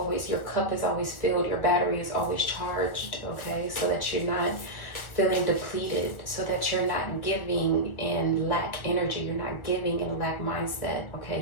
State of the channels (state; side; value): late; right; 1.5 ms